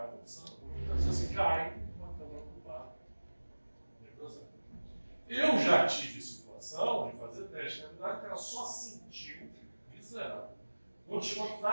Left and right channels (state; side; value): inverted; both; correlation -1.00